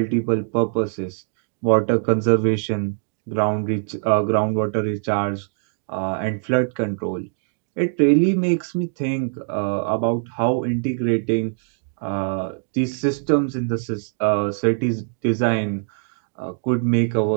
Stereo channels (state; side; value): silent; left; digital silence